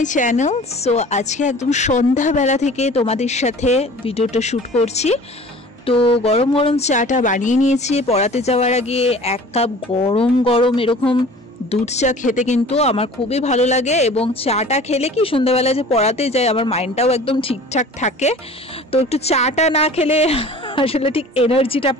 channel. So আজকে একদম সন্ধ্যাবেলা থেকে তোমাদের সাথে ভিডিওটা শ্যুট করছি। তো গরম গরম চাটা বানিয়ে নিয়েছি। পড়াতে যাওয়ার আগে এক কাপ গরম গরম এরকম দুধ চা খেতে কিন্তু আমার খুবই ভালো লাগে, এবং চাটা খেলে কি সন্ধ্যাবেলা যে পড়াতে যাই আমার মাইন্ডটাও একদম ঠিকঠাক থাকে। তো একটু চাটা না খেলে আসলে ঠিক এনার্জিটা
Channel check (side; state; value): both; normal; correlation 0.44